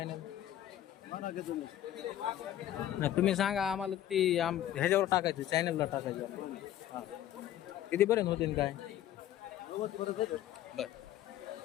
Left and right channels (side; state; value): right; quieter; 12.2 dB